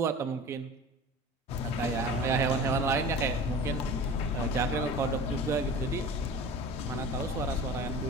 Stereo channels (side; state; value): both; normal; correlation 0.37